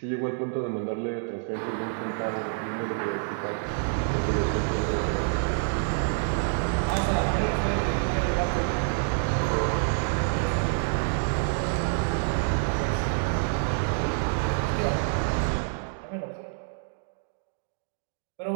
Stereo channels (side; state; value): left; silent; 60 dB below the other